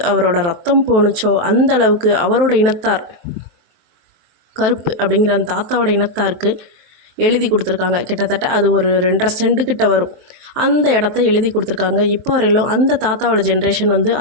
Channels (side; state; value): left; late; 23 ms